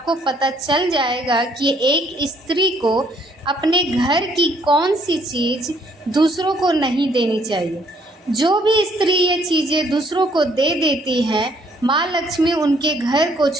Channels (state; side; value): normal; both; correlation 0.65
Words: पता चल जाएगा कि एक स्त्री को अपने घर की कौन सी चीज़ दूसरों को नहीं देनी चाहिए। जो भी स्त्री ये चीज़ें दूसरों को दे देती हैं, माँ लक्ष्मी उनके घर को